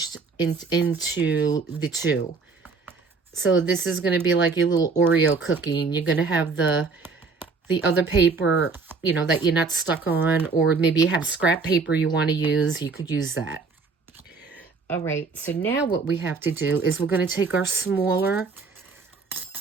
into the 2. So this is going to be like your little Oreo cookie, and you're going to have the other paper, that you're not stuck on, or maybe you have scrap paper you want to use, you could use that. All right, so now what we have to do is we're going to take the smaller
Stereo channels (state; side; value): quieter; left; 4.5 dB